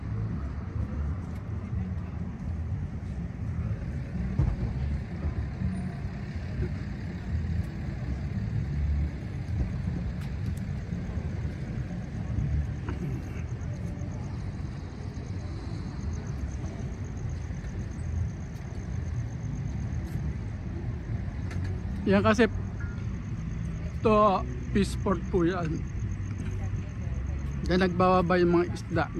Yan kasi to Peaceport po yan. Diyan nagbababa yung mga isda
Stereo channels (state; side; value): identical; both; correlation 1.00